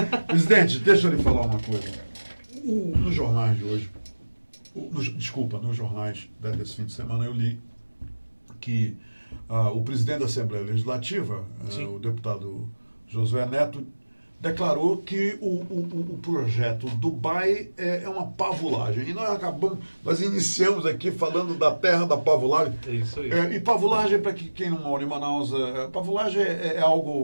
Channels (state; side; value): inverted; both; correlation -1.00